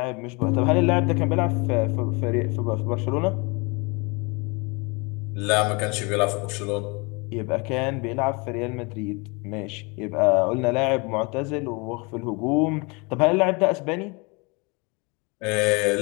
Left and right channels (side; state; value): right; quieter; 29.1 dB